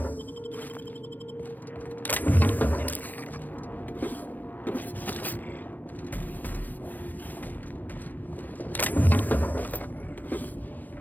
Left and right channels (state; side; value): late; right; 0.084 ms